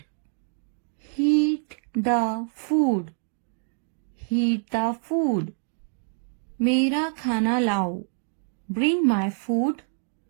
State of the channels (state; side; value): silent; left; digital silence